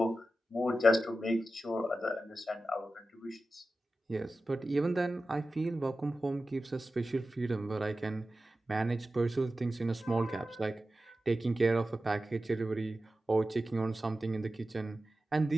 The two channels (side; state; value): both; normal; correlation 0.94